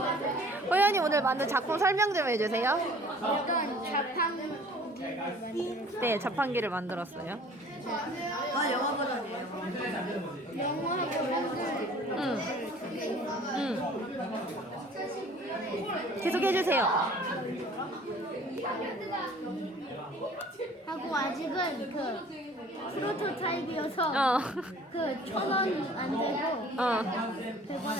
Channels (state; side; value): normal; both; correlation 0.51